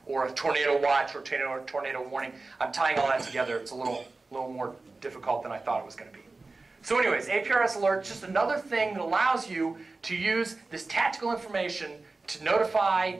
or a tornado watch or tornado warning. I'm tying all that together. It's a little more difficult than I thought it was going to be. So anyways, APRS Alert, just another thing that allows you to use this tactical information to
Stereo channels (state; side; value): quieter; left; 3.6 dB